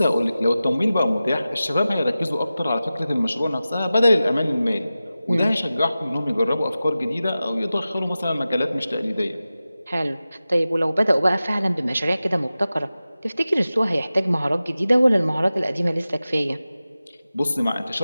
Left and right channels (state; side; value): inverted; both; correlation -0.95